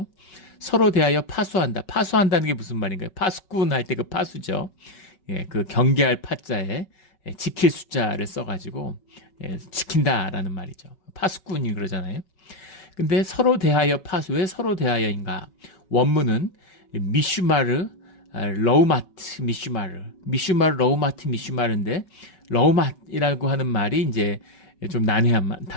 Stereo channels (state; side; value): late; right; 5.3 ms